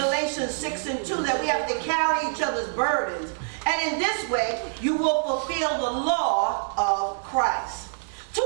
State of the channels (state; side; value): silent; left; digital silence